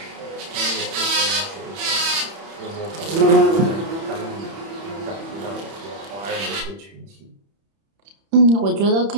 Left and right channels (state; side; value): late; left; 31 ms